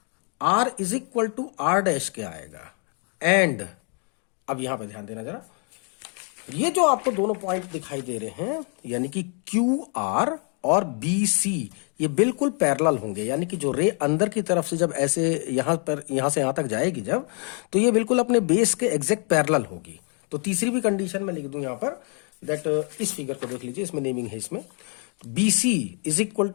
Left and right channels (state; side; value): quieter; right; 39.4 dB